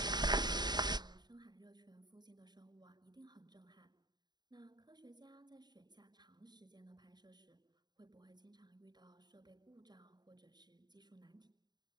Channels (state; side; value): late; left; 0.20 ms